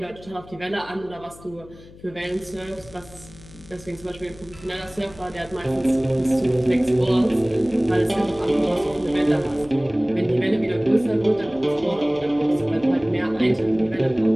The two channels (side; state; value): left; noise; hum, 21 dB below the sound